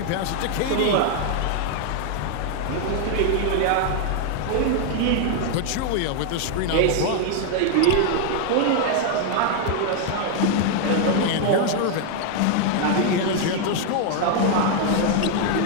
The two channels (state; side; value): different; both; correlation 0.00